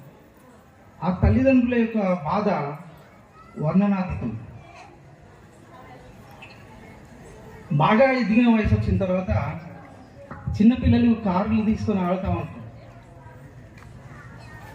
ఆ తల్లిదండ్రుల యొక్క బాధ వర్ణనాతీతం. బాగా ఎదిగిన వయసు వచ్చిన తర్వాత చిన్నపిల్లలు కార్లు తీసుకొని ఆడుతూ ఉంటారు.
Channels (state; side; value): identical; both; correlation 1.00